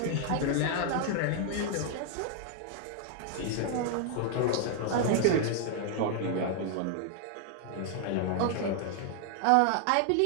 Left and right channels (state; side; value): different; both; correlation 0.00